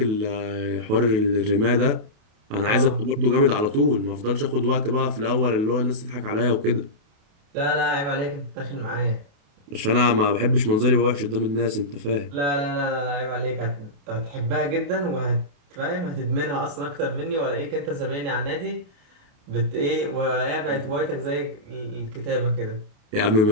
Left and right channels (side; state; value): left; late; 28 ms